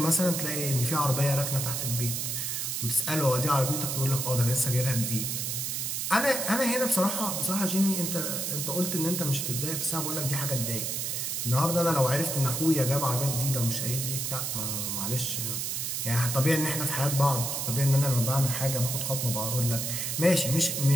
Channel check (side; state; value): right; noise; hiss, 2 dB below the sound